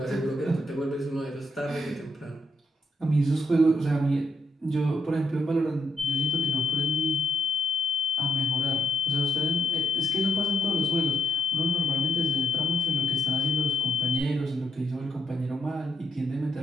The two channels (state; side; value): normal; both; correlation 0.78